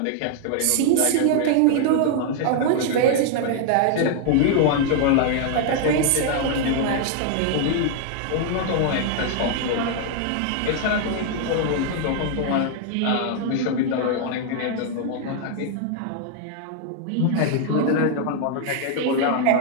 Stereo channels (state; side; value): different; both; correlation 0.00